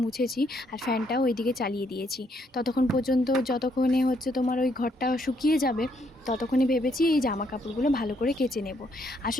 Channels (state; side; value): normal; both; correlation 0.72